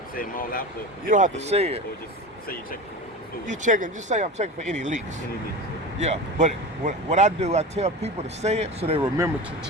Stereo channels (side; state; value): both; normal; correlation 0.29